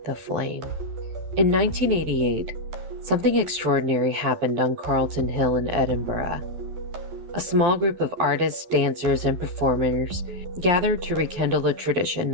the flame. In 1988, something extraordinary happened on Carlton Hill in Edinburgh. A small group of artists, dancers, and performers gathered to rekindle a tradition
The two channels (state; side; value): late; left; 12 ms